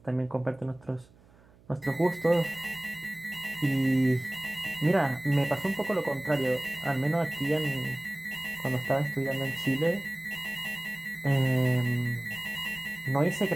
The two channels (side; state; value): right; noise; hum, 27 dB below the sound